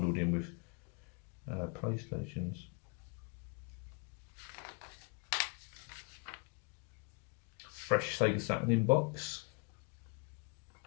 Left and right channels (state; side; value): quieter; right; 33.0 dB